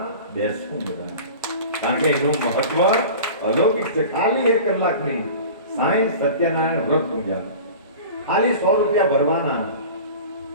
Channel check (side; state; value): both; inverted; correlation -0.38